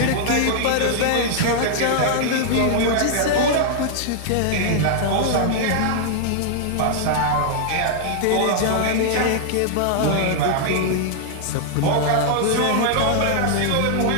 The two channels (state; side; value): different; both; correlation -0.01